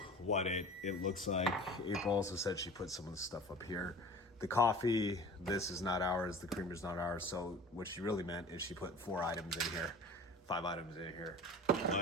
what it looks like. April also said she put some of the stuff up here. The coffee, this is not ours. The creamer's not ours. So what she really meant is she put 5 items in here.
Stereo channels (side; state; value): both; normal; correlation 0.40